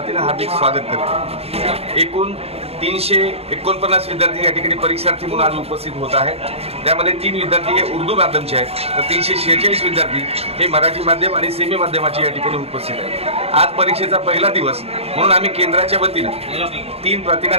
हार्दिक स्वागत करतो। एकूण 349 विद्यार्थी या ठिकाणी परीक्षार्थी म्हणून आज उपस्थित होत आहेत। त्यामध्ये 3 विद्यार्थी हे उर्दू माध्यमचे आहेत, तर 346 विद्यार्थी हे मराठी माध्यम आणि सेमी माध्यमाचे या ठिकाणी उपस्थित आहेत। आज परीक्षेचा पहिला दिवस म्हणून आम्ही केंद्राच्या वतीनं 3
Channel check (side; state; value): left; late; 0.29 ms